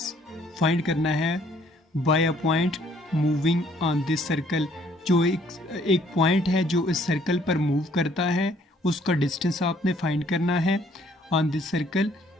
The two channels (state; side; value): normal; both; correlation 0.62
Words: फाइंड करना है by a point moving on this circle. जो एक पॉइंट है जो इस सर्कल पर मूव करता है, उसका डिस्टेंस आपने फाइंड करना है on this circle.